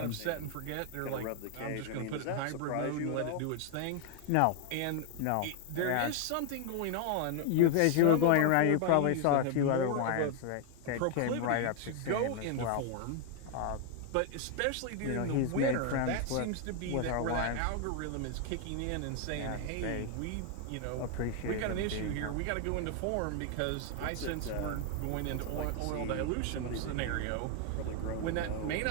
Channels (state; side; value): different; both; correlation 0.00